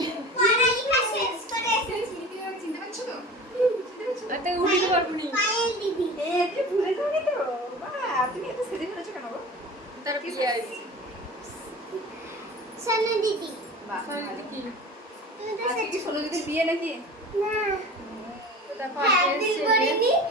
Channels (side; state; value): both; normal; correlation 0.37